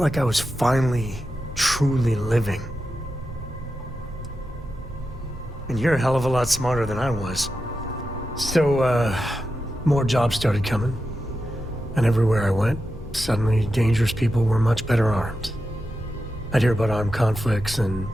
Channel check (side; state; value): both; normal; correlation 0.90